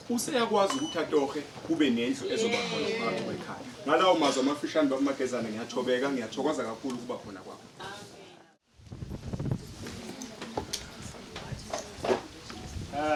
useyakwazi ukuthi atohe kube nendlu ezobakhona phakathi kwekhaya. Ngalawo mazwi amafishane baMagezana ngiyathobeka, ngiyathokoza kakhulu ukuba khona kwakho.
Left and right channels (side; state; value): both; identical; correlation 1.00